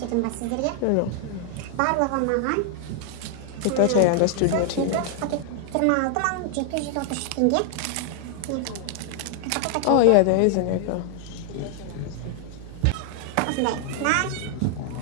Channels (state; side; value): different; both; correlation 0.00